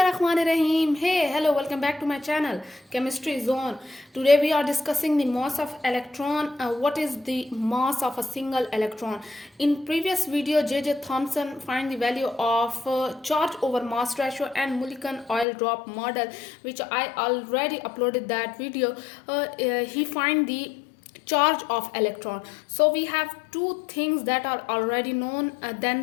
Hey, hello, welcome back to my channel, Chemistry Zone. Today we are discussing the mass of electron. What is the mass of a single electron? In previous video, J.J. Thomson find the value of charge over mass ratio and Mulliken oil drop model, which I already uploaded that video. He find the charge of electron. So we have two things that are already known.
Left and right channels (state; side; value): drops out; right; at 15.5 s